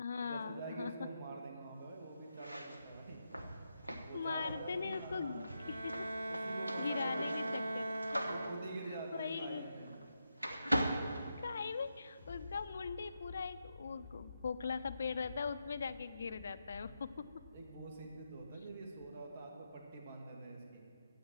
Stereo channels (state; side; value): inverted; both; correlation -0.85